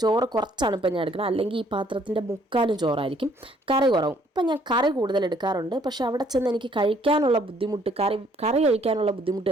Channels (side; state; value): both; normal; correlation 0.63